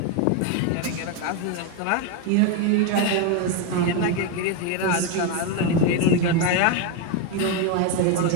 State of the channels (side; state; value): both; different; correlation 0.02